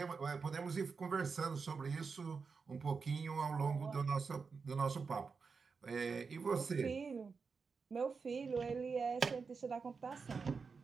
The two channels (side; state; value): left; quieter; 5.1 dB